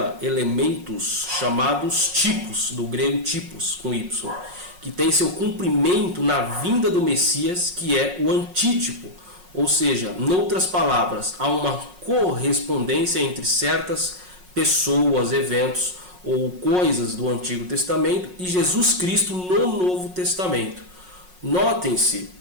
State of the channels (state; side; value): late; left; 5.5 ms